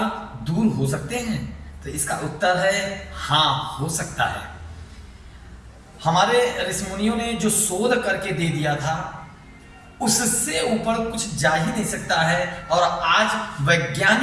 दूर हो सकते हैं? तो इसका उत्तर है हाँ, हो सकता है। हमारे ऋषिमुनियों ने जो शोध करके दे दिया था, उससे ऊपर कुछ जा ही नहीं सकता है। और आज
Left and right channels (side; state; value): both; identical; correlation 1.00